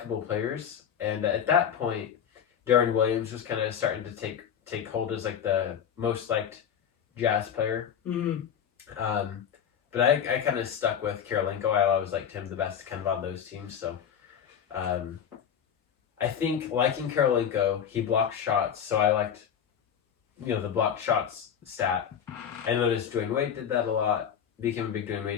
players, and at that point, Darren Williams was kind of starting to take hold as like the most liked Jazz player. Mm-hmm. But I kind of stuck with Karolinko. I always liked him the best, kind of on those teams. So, I think liking Karolinko, he blocked shots, so I liked. The blocked shots stat. I noticed Dwayne Wade did that a lot. Became a big Dwayne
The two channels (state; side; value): quieter; right; 8.4 dB